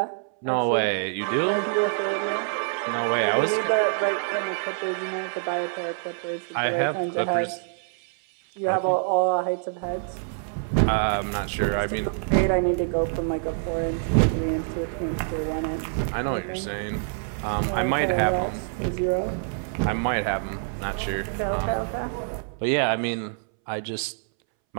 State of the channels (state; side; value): silent; left; 61 dB below the other